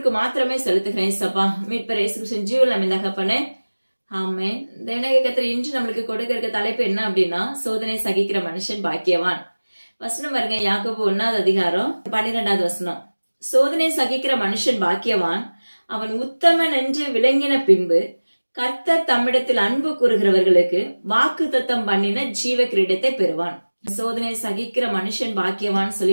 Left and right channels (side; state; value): both; inverted; correlation -1.00